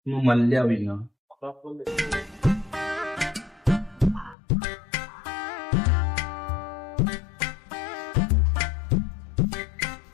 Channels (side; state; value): right; drops out; at 4.4 s